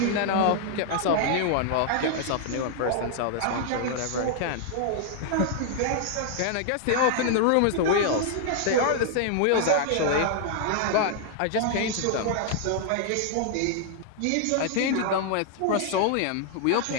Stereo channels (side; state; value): both; different; correlation 0.00